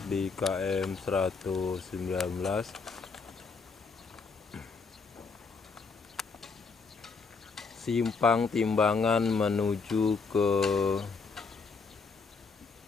di KM 119. Simpang Timbangan menuju ke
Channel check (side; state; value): right; quieter; 4.7 dB